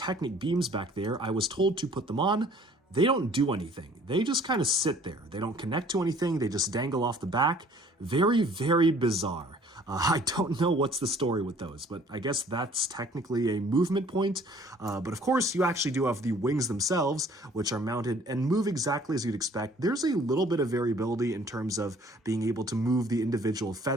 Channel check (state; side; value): normal; both; correlation 0.55